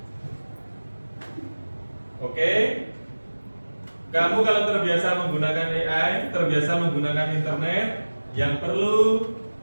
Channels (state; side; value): inverted; both; correlation -1.00